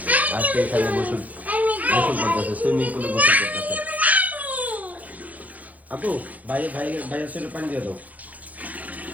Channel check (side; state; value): left; late; 0.077 ms